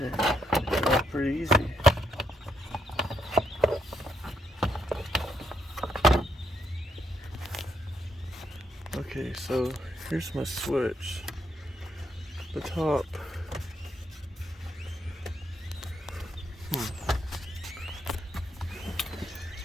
that's pretty easy. Okay, so here's my switch. The top.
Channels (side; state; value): both; normal; correlation 0.77